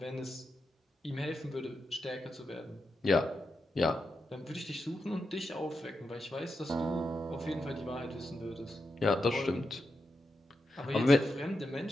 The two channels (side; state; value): both; normal; correlation 0.87